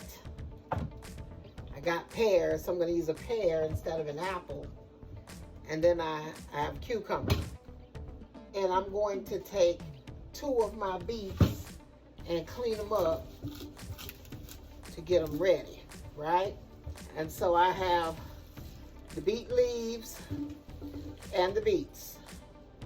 I got pears, so I'm going to use a pear instead of an apple. And then I have cucumbers. And I'm going to take 2 of my beets and clean them up to get them ready, right? And so I have the beet leaves and the beets.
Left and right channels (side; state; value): both; identical; correlation 1.00